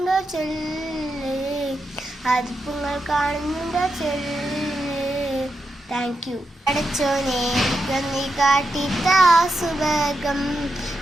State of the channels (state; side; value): normal; both; correlation 0.86